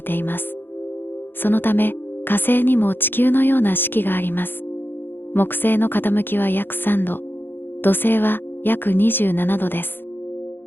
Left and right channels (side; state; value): right; late; 0.099 ms